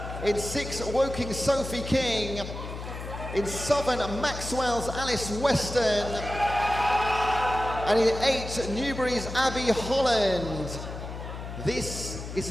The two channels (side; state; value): left; noise; hum, 9 dB below the sound